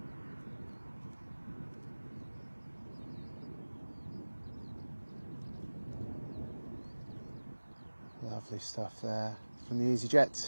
Lovely stuff there from the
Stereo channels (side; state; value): both; inverted; correlation -1.00